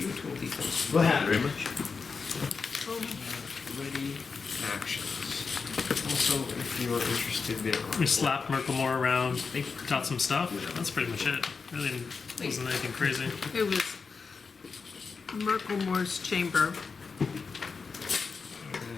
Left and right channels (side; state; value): right; quieter; 5.0 dB